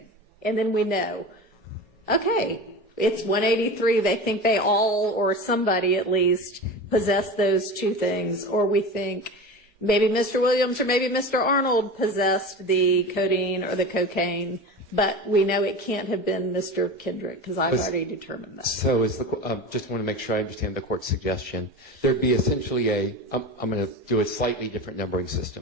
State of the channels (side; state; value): both; normal; correlation 0.29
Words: And then we know, okay, it's 183. They think they all, or somebody at least, possessed those two things. Or we think maybe Mr. Williams or maybe Mr. Arnold possessed the codeine or the cocaine. But we know it can't have been Mr. Kendrick, because I've already determined that. So just want to make sure I understand the court's suggestion. There'd be essentially I'm going to do a slightly different numbering